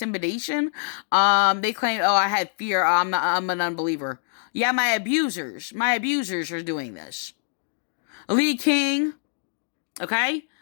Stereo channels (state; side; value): silent; right; digital silence